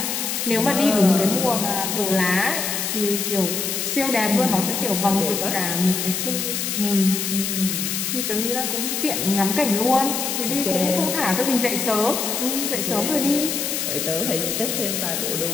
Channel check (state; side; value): noise; left; hiss, 1 dB below the sound